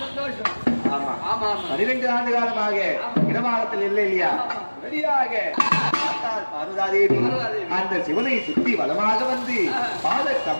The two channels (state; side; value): inverted; both; correlation -1.00